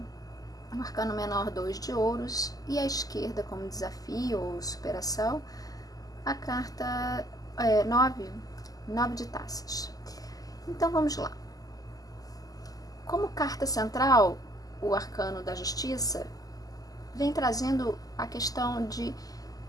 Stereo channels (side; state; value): right; late; 0.17 ms